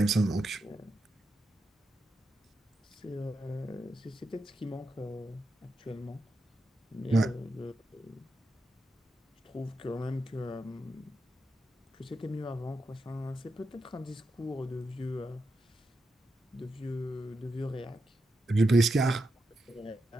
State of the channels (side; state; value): both; normal; correlation 0.86